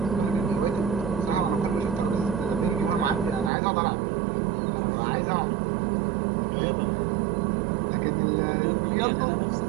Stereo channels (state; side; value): drops out; left; at 3.5 s